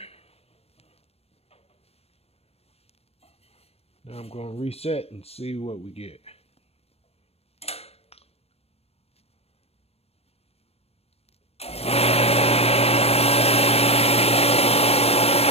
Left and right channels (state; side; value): late; right; 0.29 ms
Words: Now I'm gonna reset and see what we get.